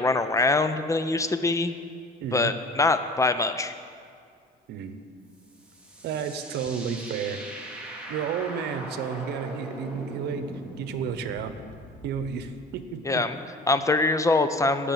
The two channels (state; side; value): normal; both; correlation 0.40